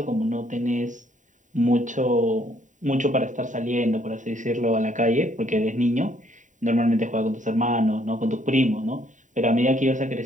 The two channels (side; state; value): left; late; 0.36 ms